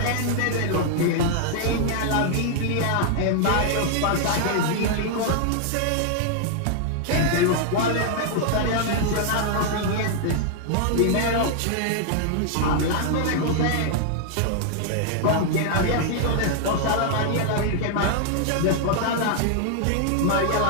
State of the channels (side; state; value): both; different; correlation 0.00